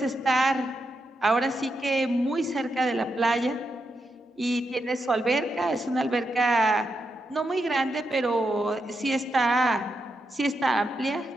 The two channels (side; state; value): both; normal; correlation 0.84